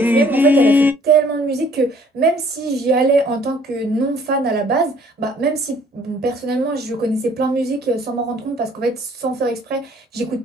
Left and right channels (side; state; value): both; normal; correlation 0.58